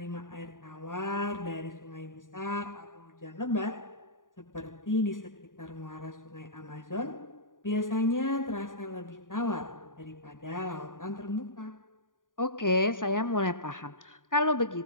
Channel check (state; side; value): late; right; 0.89 ms